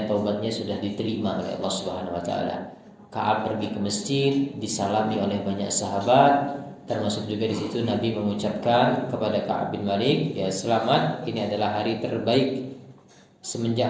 taubatnya sudah diterima oleh Allah Subhanahu wa taala. Ka'ab pergi ke masjid, disalami oleh banyak sahabat, termasuk juga di situ Nabi mengucapkan kepada Ka'ab bin Malik, ya selamat, ini adalah hari terbaik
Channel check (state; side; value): identical; both; correlation 1.00